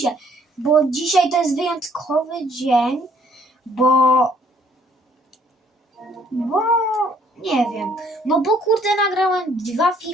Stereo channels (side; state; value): both; normal; correlation 0.63